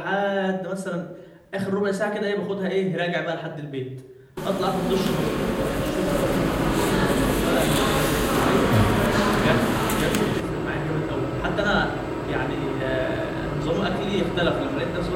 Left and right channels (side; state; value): both; identical; correlation 1.00